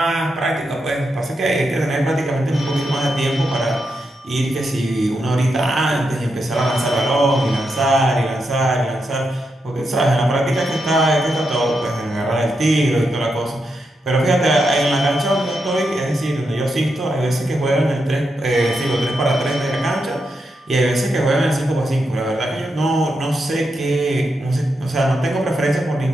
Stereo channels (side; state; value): both; normal; correlation 0.84